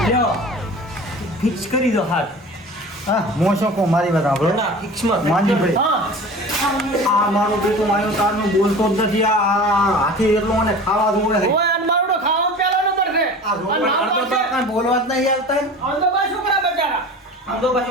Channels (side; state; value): both; normal; correlation 0.38